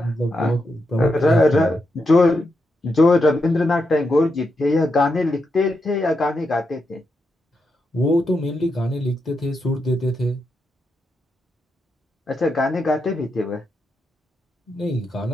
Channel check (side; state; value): both; normal; correlation 0.84